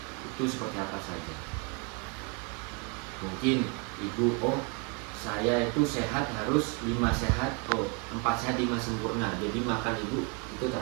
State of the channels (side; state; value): left; quieter; 32.6 dB